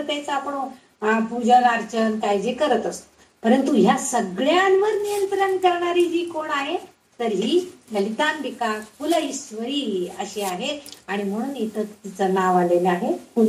आपण पूजन अर्चन काय जे करत असतो, परंतु ह्या सगळ्यांवर नियंत्रण करणारी जी कोण आहे तर ही ललितांबिका कुल ईश्वरी अशी आहे. आणि म्हणून इथं तिचं नाव आलेलं आहे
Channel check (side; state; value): both; identical; correlation 1.00